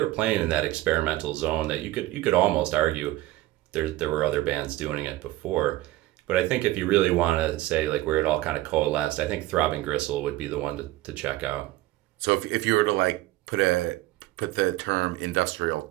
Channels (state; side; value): quieter; left; 17.0 dB